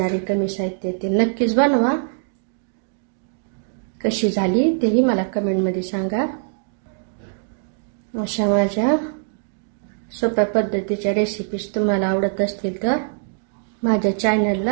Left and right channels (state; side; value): silent; left; digital silence